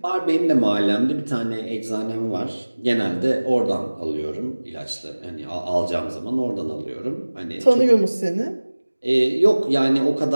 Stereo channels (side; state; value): both; inverted; correlation -1.00